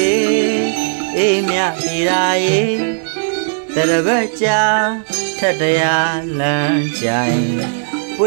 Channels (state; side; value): silent; left; digital silence